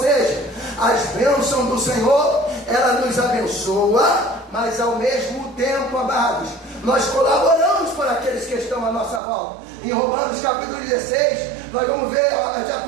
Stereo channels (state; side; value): drops out; left; at 9.2 s